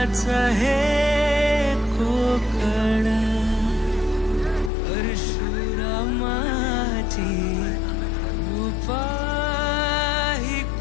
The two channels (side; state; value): right; drops out; at 4.7 s